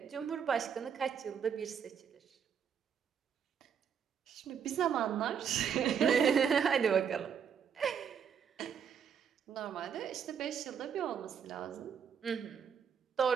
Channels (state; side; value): quieter; left; 7.4 dB